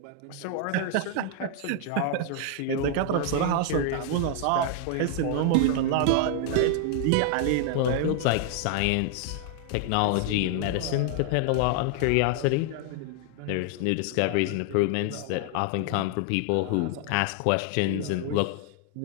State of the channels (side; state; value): both; different; correlation 0.00